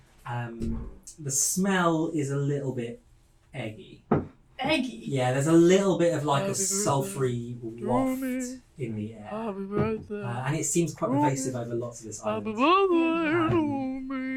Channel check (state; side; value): identical; both; correlation 1.00